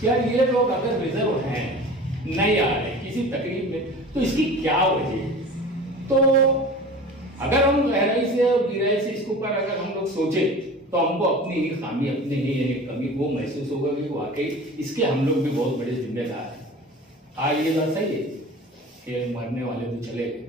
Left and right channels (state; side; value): normal; both; correlation 0.38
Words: कि यार ये लोग अगर रिजर्व हैं, नहीं आ रहे किसी तकलीफ में, तो इसकी क्या वजह है? तो अगर हम गहराई से और गहराई से इसके ऊपर अगर हम लोग सोचे तो हमको अपनी ही खामी, अपनी ही कमी वो महसूस होगा कि वाकई इसके हम लोग भी बहुत बड़े जिम्मेदार हैं। आज ये बात सही है कि मरने वाले तो चले गए,